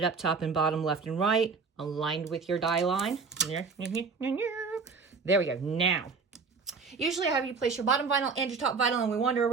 up top and bottom, left and right, aligned with your die line. There we go. Now, usually I have you place your bottom vinyl and your top vinyl and we wander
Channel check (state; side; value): quieter; left; 4.9 dB